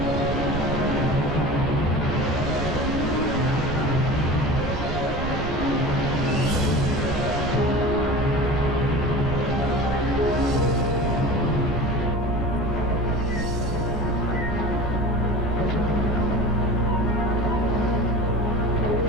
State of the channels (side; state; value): right; noise; rumble, 5 dB below the sound